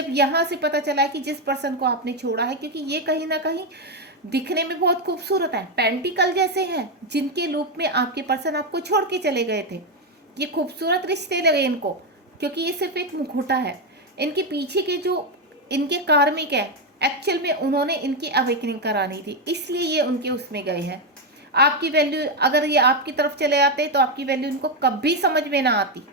यहाँ से पता चला है कि जिस पर्सन को आपने छोड़ा है, क्योंकि ये कहीं ना कहीं दिखने में बहुत खूबसूरत है, पेंटिकल जैसे हैं, जिनके लूप में आपके पर्सन आपको छोड़ के चले गए थे। ये खूबसूरत रिश्ते लगे इनको, क्योंकि ये सिर्फ एक मुखौटा है। इनके पीछे के जो इनके कार्मिक है, एक्चुअल में उन्होंने इनकी अवेकनिंग करानी थी, इसलिए ये उनके उसमें गए हैं। आपकी वैल्यू, अगर ये आपकी तरफ चले आते तो आपकी वैल्यू इनको कभी समझ में ना आती,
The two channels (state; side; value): normal; both; correlation 0.06